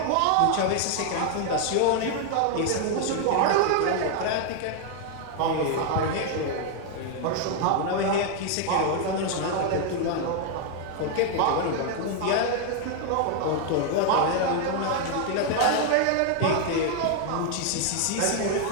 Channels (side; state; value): both; different; correlation 0.00